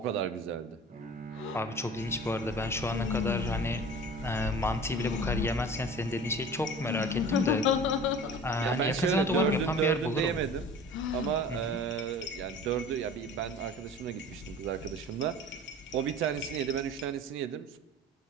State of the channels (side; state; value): both; normal; correlation 0.41